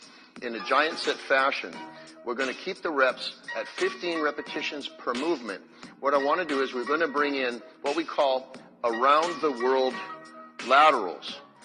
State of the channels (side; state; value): both; identical; correlation 1.00